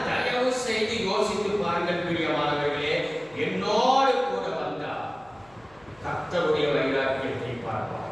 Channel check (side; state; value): left; noise; hum, 29 dB below the sound